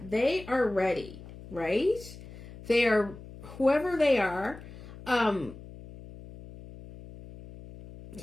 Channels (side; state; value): left; noise; hum, 16 dB below the sound